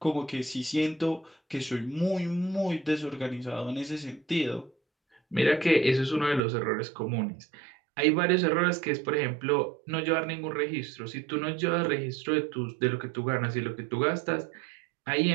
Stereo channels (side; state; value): left; drops out; at 6.4 s